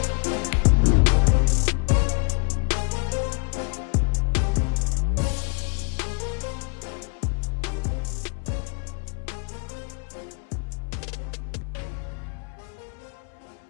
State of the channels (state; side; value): quieter; right; 38.8 dB